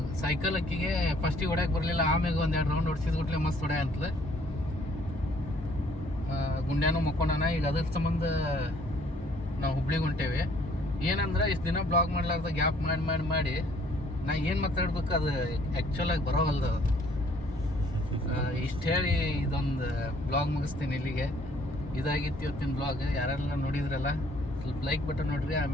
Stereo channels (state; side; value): normal; both; correlation 0.61